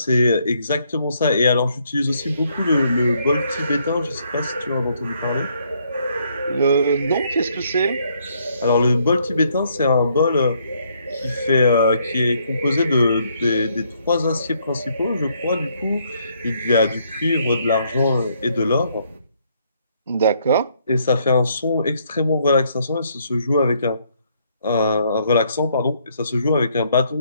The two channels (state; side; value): inverted; both; correlation -0.70